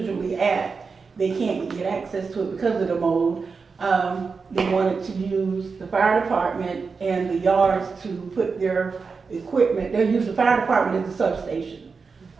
at. They can't get access to it because of the mold. They wanted to use the fire department and the yards to put their equipment. They'll use the fire department as a substation.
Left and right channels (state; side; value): quieter; left; 4.9 dB